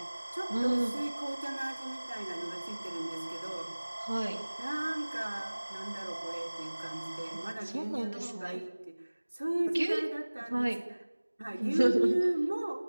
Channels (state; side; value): inverted; both; correlation -1.00